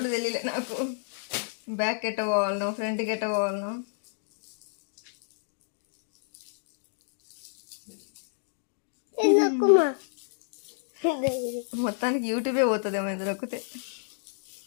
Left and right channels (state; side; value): silent; right; digital silence